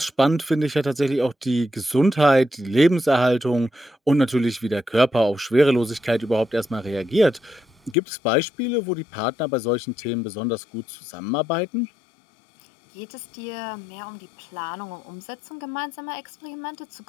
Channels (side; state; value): right; drops out; at 8.0 s